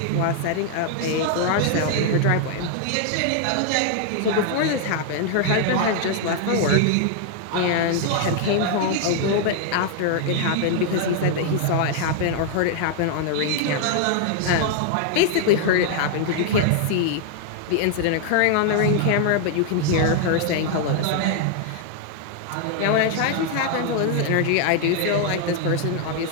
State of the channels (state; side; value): different; both; correlation 0.00